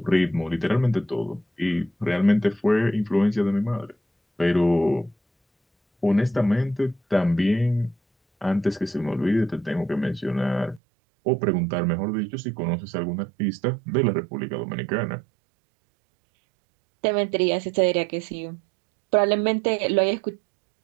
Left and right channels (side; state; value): left; drops out; at 10.8 s